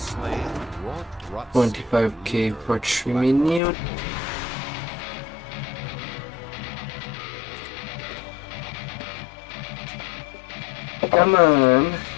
$25K for 3 minutes. Come on.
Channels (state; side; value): drops out; right; at 3.6 s